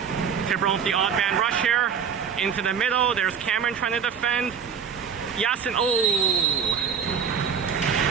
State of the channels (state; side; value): quieter; left; 7.0 dB